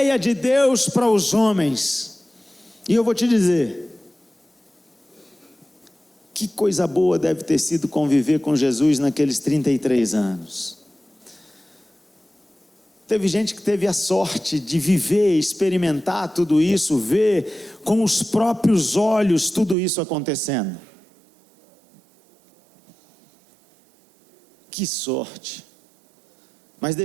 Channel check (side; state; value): left; drops out; at 19.8 s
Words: de Deus para os homens. E eu vou te dizer, que coisa boa deve ter sido conviver com Jesus naqueles 33 anos. Teve gente que teve a sorte de viver, experimentar tudo isso, ver com os próprios olhos tudo isso acontecendo. Que sorte! Mas